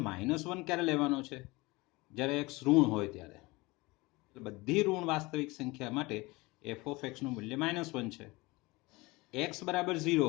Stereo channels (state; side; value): quieter; right; 23.0 dB